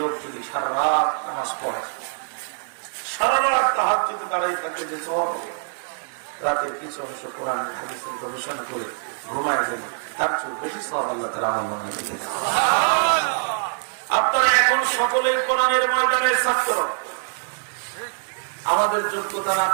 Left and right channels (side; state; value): left; silent; digital silence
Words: যদি সারা রাত নামাজ পড়ে সারা রাত তাহাজ্জুদে দাঁড়াই থাকে যে সওয়াব হবে, রাতের কিছু অংশ কোরআন হাদিসের গবেষণা করে ঘুমায় যাবে, তার চেয়ে বেশি সওয়াব আল্লাহ তাআলা আমল নামায় দিবেন। আপনারা এখন সকলেই কোরআনের ময়দানের ছাত্র। আমাদের যোগ্যতা না